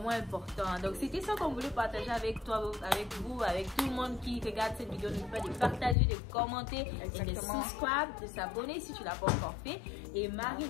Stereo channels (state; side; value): drops out; right; at 6.0 s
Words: important. Donc, c'était ça qu'on voulait partager avec toi, avec vous, avec tout le monde qui regarde cette vidéo. N'oublie pas de partager, de commenter et de subscribe, de s'abonner si tu ne l'as pas encore fait. Et